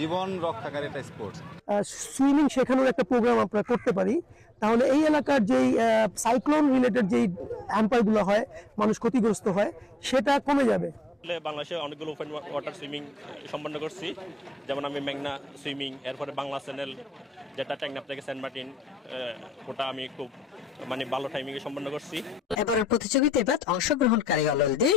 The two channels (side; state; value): both; normal; correlation 0.82